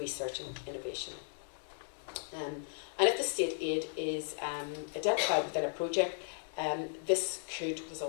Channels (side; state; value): right; silent; 54 dB below the other